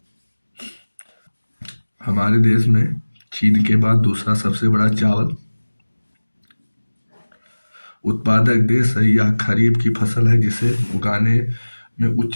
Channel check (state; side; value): inverted; both; correlation -1.00